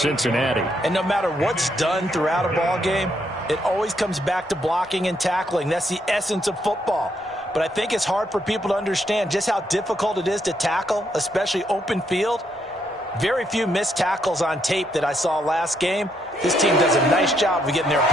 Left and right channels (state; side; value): normal; both; correlation 0.75